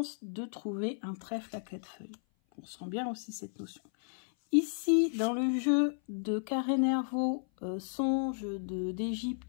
de trouver un trèfle à 4 feuilles. On sent bien aussi cette notion. Ici, dans le jeu de Carré Nervaux, Songe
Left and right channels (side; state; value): right; silent; 55 dB below the other